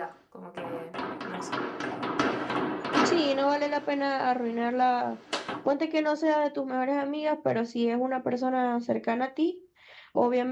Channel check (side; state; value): both; identical; correlation 1.00